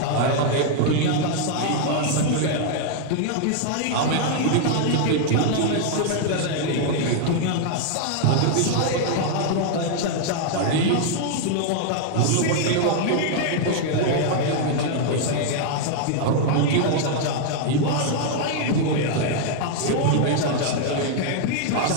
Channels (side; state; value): both; different; correlation 0.00